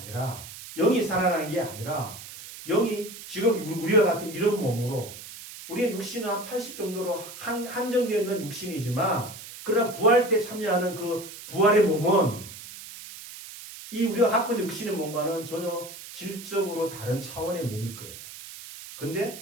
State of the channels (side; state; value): right; noise; hiss, 14 dB below the sound